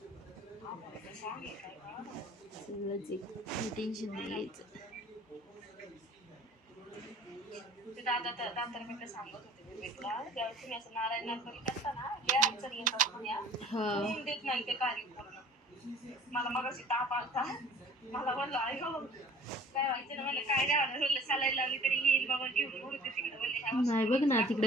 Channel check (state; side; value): normal; both; correlation 0.49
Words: आभाळाचं song आहे काय बा. सगळंच एक टेन्शन नाही घ्यायचं. ते दादा सांगत होते विवेकला, जेव्हा तुम्ही असं नारायण नर्मली करता ना, लय अडचणी येतात म्हण्या. होऊन देत नाही ते कार्य पूर्ण. मला मगाशी ताप आलता, मला म्हणलं आई हो काय व्हायचं ना, मला काय नाही म्हणलं सलाईन लावली तरी येईल बाबा घेऊन उडते तिकडे बोलले. नाही बघ ना